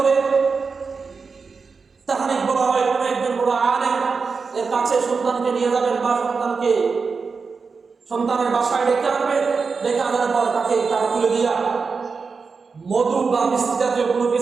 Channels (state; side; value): quieter; left; 4.9 dB